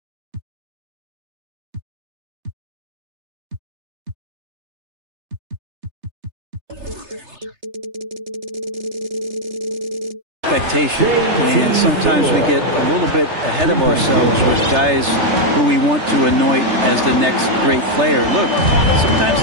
expectation, and sometimes we get a little bit ahead of ourselves with guys who we want to anoint as the next great player. Look, sometimes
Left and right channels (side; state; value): left; late; 3.3 ms